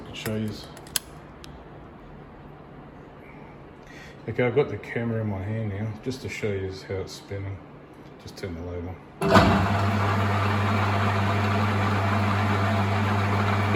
can show you. Okay, I've got the camera in my hand now, just to show you how it's spinning. Just turn the lathe on.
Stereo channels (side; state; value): both; identical; correlation 1.00